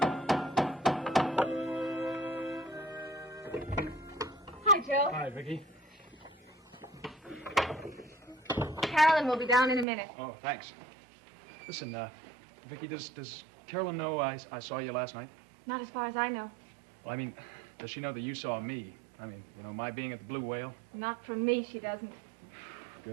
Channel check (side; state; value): left; drops out; at 9.9 s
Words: Hi, Joe. Hi, Vicky. Carolyn will be down in a minute. Oh, thanks. Listen, Vicky, does Carolyn know I saw you last night? Not as far as I know. Well, I mean, does she know that you saw me? I mean, my being at the Blue Whale? Not from me, she doesn't.